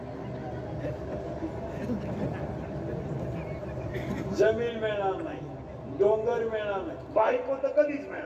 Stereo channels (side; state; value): both; identical; correlation 1.00